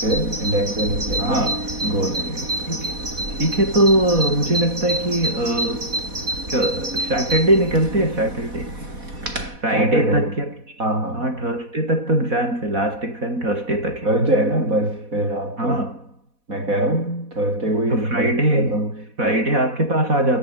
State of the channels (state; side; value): late; left; 4.1 ms